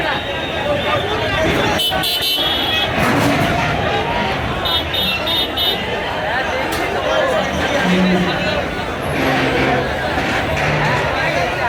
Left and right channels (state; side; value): identical; both; correlation 1.00